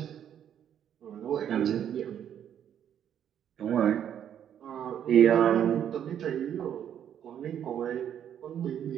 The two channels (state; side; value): quieter; left; 9.6 dB